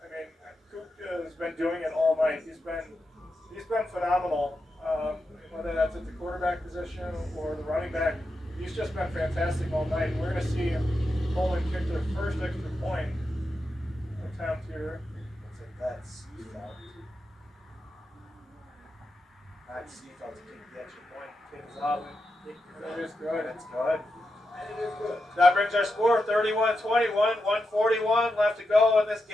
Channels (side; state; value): both; normal; correlation 0.88